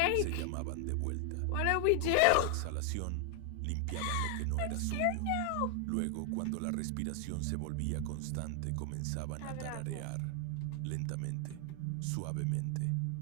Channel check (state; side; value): different; both; correlation 0.00